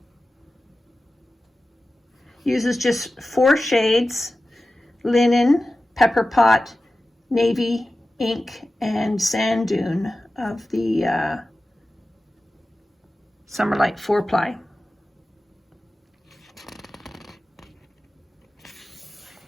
Uses just 4 shades: linen, pepper pot, navy, ink, and sand dune of the Summerlight 4-ply.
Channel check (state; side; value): normal; both; correlation 0.95